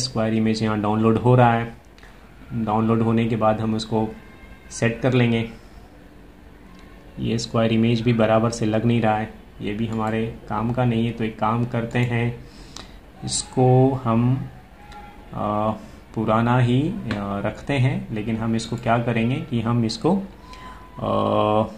इमेज यहाँ डाउनलोड हो रहा है। डाउनलोड होने के बाद हम उसको सेट कर लेंगे। ये स्क्वायर इमेज भी बराबर से लग नहीं रहा है, ये भी हमारे काम का नहीं है। तो एक काम करते हैं, इसको हम पुराना ही रखते हैं, लेकिन हम इसको क्या करेंगे कि हम इसको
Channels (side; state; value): both; identical; correlation 1.00